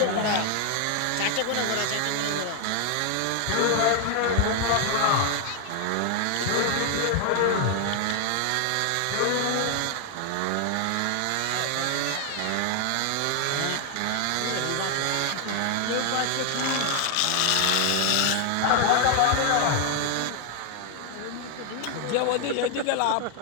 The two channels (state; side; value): different; both; correlation 0.00